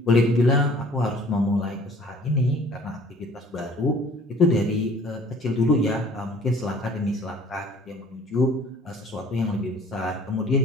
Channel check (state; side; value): normal; both; correlation 0.52